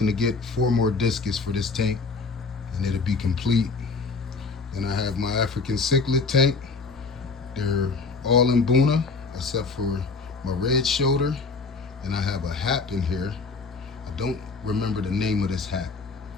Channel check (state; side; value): quieter; right; 4.3 dB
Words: to get 4 more discus for this tank, and it'll be complete. Then I have my African cichlid tank. They're all in Buna, except for my red shoulder. And I have a hat in here. I don't remember the name of this hat.